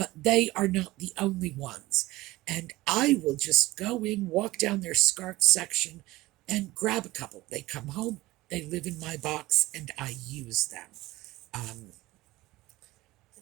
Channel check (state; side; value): quieter; left; 18.7 dB